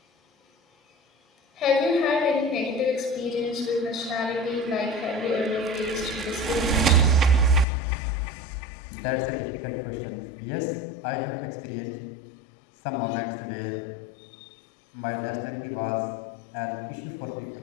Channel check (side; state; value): right; drops out; at 7.7 s